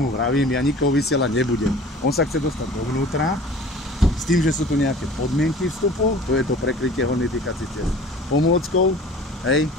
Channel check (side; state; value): both; normal; correlation 0.44